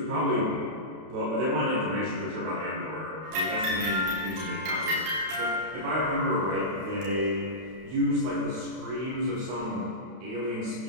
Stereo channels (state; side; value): late; left; 32 ms